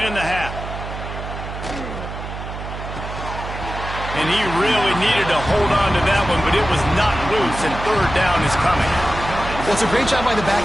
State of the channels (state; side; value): noise; right; hum, 8 dB below the sound